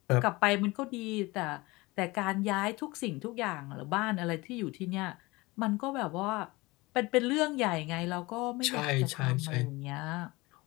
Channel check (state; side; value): quieter; right; 22.4 dB